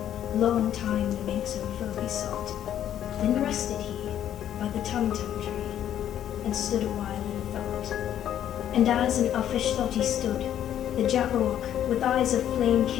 long time the mink's own foe he sought. Then rested he by the tum-tum tree, and stood a while in thought. And as in uffish thought he stood, the jabberwock with eyes of flame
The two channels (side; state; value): right; quieter; 10.7 dB